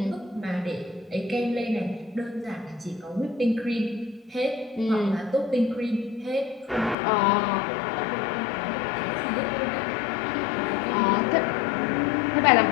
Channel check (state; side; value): drops out; right; at 7.0 s